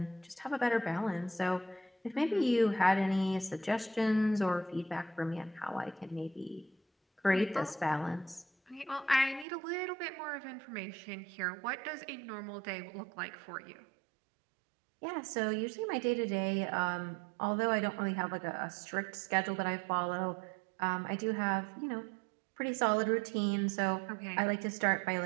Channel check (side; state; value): left; drops out; at 9.5 s